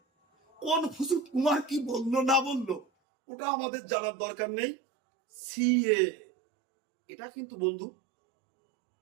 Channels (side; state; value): left; drops out; at 2.9 s